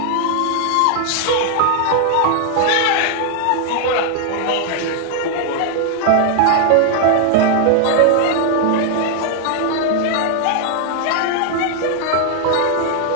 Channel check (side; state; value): both; different; correlation 0.00